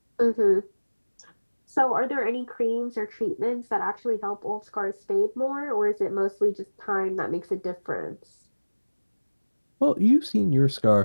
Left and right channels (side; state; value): both; inverted; correlation -1.00